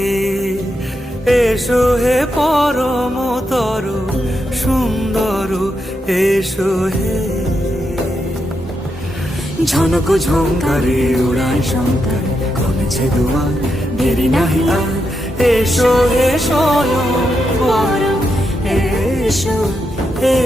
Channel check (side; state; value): both; normal; correlation 0.84